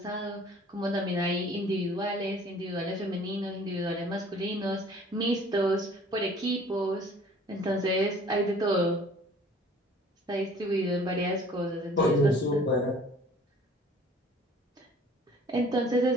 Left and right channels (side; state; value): both; normal; correlation 0.52